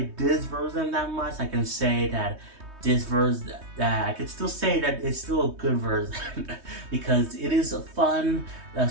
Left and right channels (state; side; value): late; left; 3.2 ms